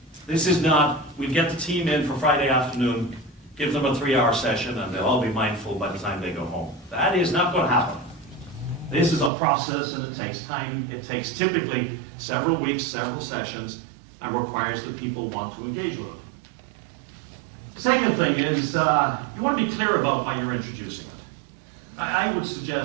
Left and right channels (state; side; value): drops out; left; at 9.3 s